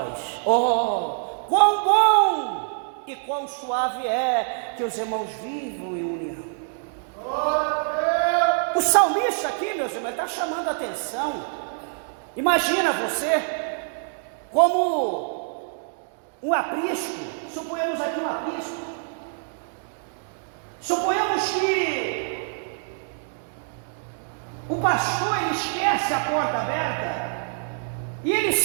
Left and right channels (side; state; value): left; silent; digital silence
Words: oh, quão bom e quão suave é que os irmãos vivam em união. O salmista aqui, meus irmãos, está chamando a atenção. Imagina você como um aprisco, suponhamos aqui um aprisco. Suponhamos que o pastor ele esquece a porta aberta e ele